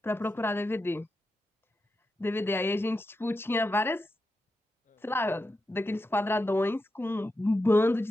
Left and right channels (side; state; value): both; normal; correlation 0.88